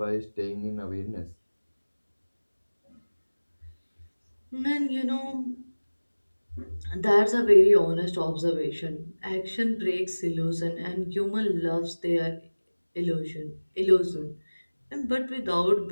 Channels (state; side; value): inverted; both; correlation -1.00